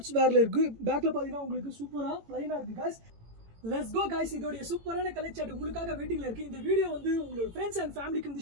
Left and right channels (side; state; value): left; late; 18 ms